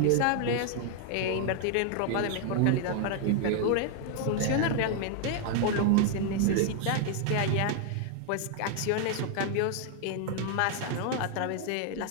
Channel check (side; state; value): both; different; correlation 0.00